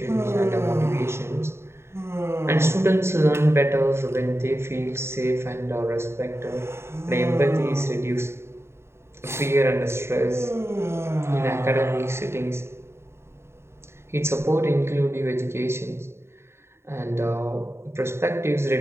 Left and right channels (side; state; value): left; late; 0.12 ms